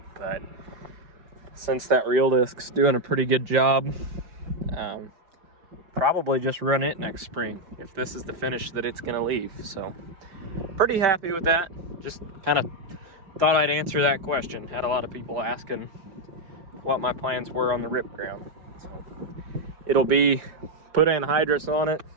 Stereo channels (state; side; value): late; left; 5.0 ms